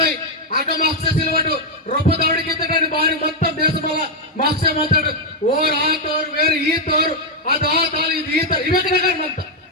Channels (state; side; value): normal; both; correlation -0.01